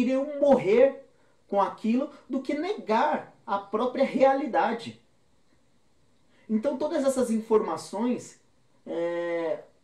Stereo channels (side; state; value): both; identical; correlation 1.00